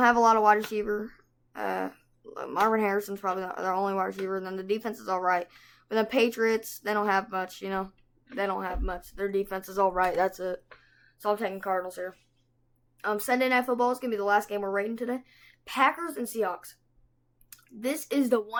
have a lot of wide receiver. Marvin Harrison's probably their only wide receiver, and then the defense is all right. But the Patriots, they don't have much, They don't have much. Their defense is all right. That's it. So I'm taking Cardinals here. Sunday Night Football is going to be the last game we're rating today. Packers and Seahawks. This is the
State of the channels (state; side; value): identical; both; correlation 1.00